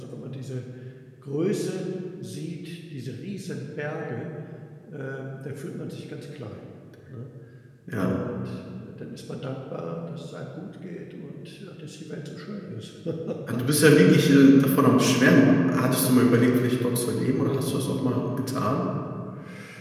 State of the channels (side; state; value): both; identical; correlation 1.00